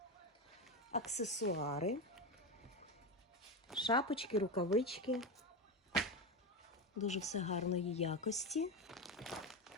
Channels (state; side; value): normal; both; correlation 0.16